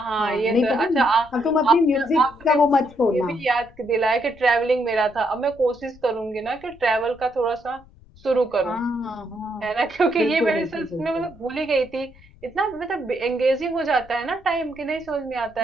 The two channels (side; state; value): left; noise; rumble, 24 dB below the sound